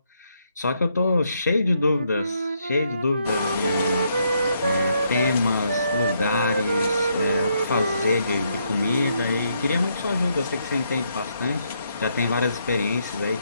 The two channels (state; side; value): inverted; both; correlation -0.75